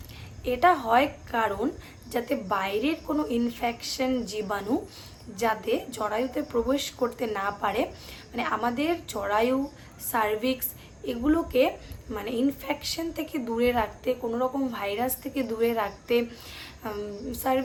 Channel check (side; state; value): both; identical; correlation 1.00